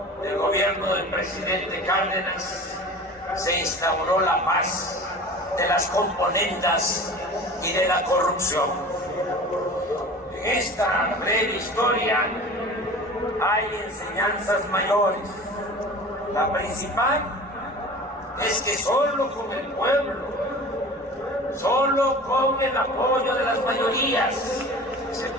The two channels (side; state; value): both; normal; correlation 0.39